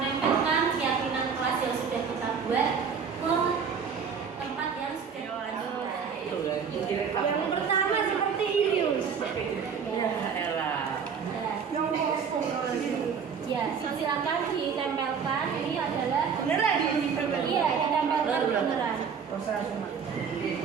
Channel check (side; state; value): left; quieter; 6.5 dB